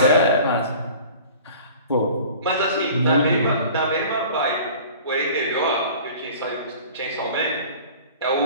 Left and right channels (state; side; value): inverted; both; correlation -0.44